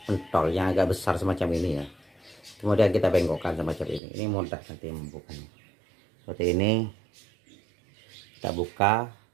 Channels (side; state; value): left; drops out; at 4.0 s